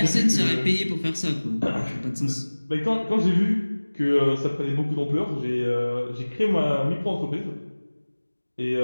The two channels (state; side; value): inverted; both; correlation -1.00